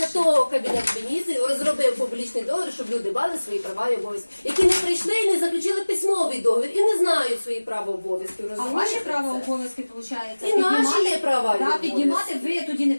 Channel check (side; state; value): both; inverted; correlation -1.00